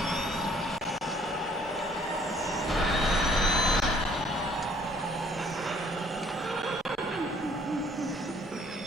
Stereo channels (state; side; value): normal; both; correlation 0.60